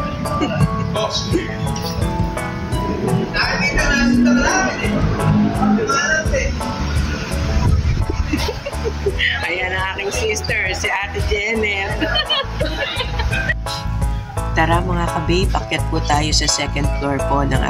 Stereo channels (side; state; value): both; identical; correlation 1.00